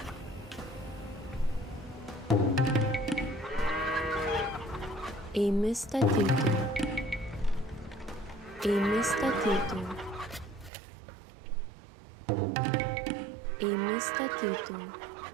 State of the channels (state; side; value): drops out; left; at 10.7 s